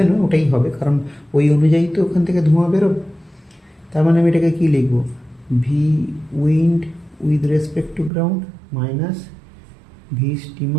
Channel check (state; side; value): drops out; left; at 8.1 s